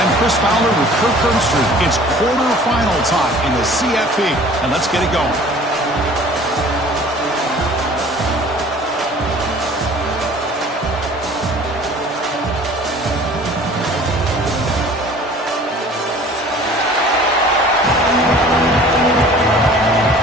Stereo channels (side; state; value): both; normal; correlation 0.48